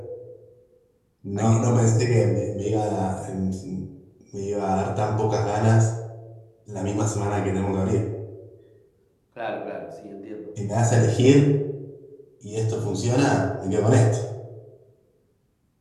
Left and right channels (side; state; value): both; identical; correlation 1.00